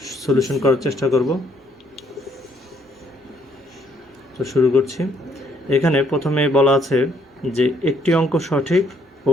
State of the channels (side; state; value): both; normal; correlation 0.68